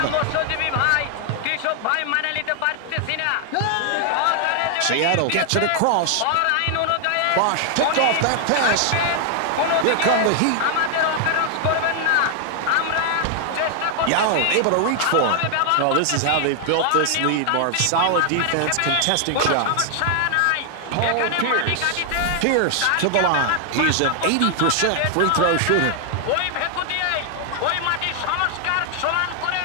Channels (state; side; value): different; both; correlation 0.00